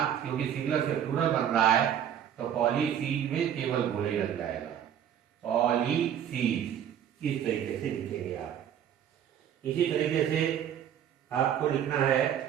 क्योंकि सिंगुलर से प्लूरल बन रहा है तो पॉलिसीज में केवल गोले लग जाएगा, पॉलिसीज। इस तरीके से लिखेंगे आप। इसी तरीके से आपको लिखना है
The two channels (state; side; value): quieter; left; 9.6 dB